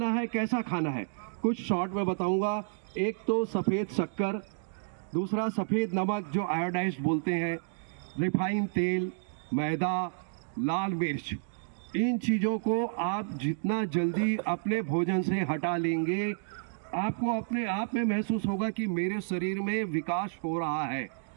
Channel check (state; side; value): silent; left; digital silence